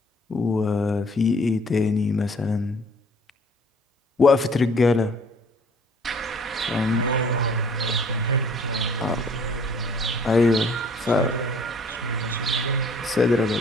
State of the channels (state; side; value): normal; both; correlation 0.56